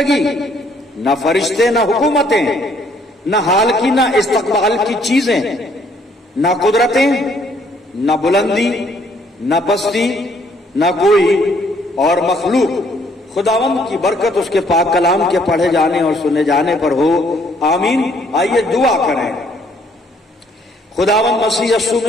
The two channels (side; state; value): both; normal; correlation 0.65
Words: न फरिश्ते, न हुकूमतें, न हाल की न इस्तकबाल की चीजें, न कुदरतें, न बुलंदी, न पस्ती, न कोई और मखलूक। खुदावंद की बरकत उसके पाक कलाम के पढ़े जाने और सुने जाने पर हो, आमीन। आइए दुआ करें। खुदावंद मसीह यीशु